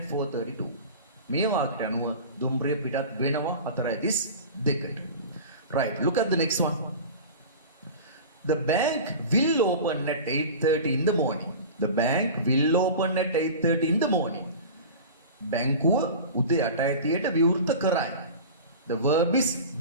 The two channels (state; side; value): inverted; both; correlation -0.34